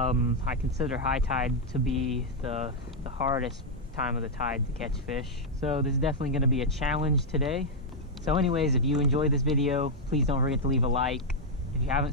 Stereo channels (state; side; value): normal; both; correlation -0.03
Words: consider high tide to be the hardest time of the tide to catch fish. So this is definitely gonna be a challenge today. So anyways, if you enjoyed this video, please don't forget to leave a like. If you haven't